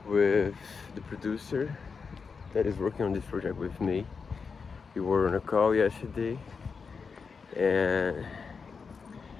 with the producer that is working on this project with me. We were on a call yesterday, and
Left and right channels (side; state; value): right; quieter; 5.3 dB